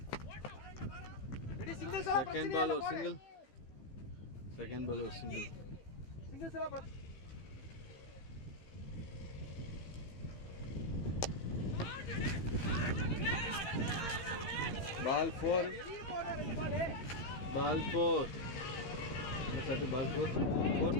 second ball और सिंगल. सेकंड बॉल और single. Ball 4. Ball 4. Ball 4. Fourth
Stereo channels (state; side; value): late; right; 15 ms